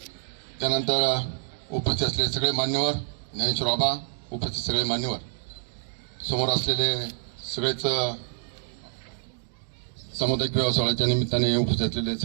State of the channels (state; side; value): silent; left; digital silence